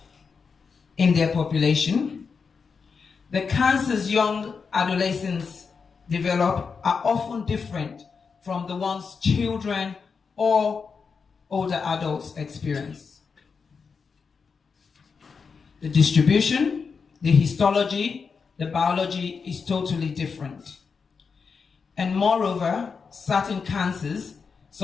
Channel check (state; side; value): quieter; right; 5.4 dB